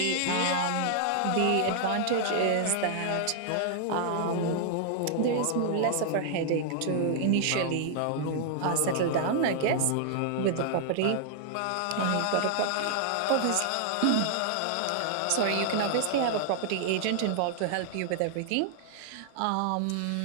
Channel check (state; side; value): different; both; correlation 0.00